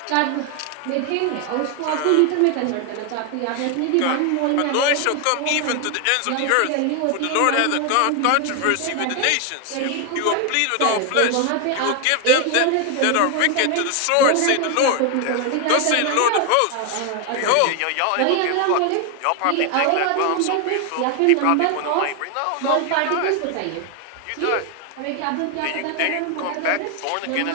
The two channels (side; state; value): both; different; correlation 0.01